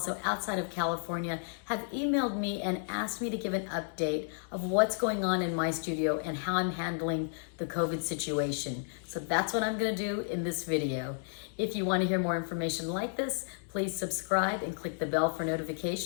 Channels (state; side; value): silent; right; digital silence